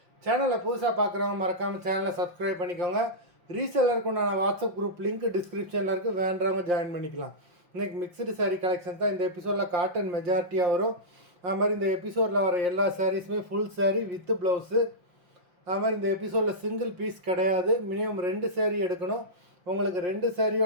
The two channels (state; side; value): late; left; 5.6 ms